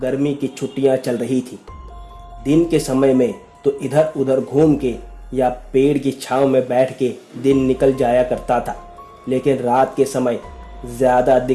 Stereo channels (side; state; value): both; identical; correlation 1.00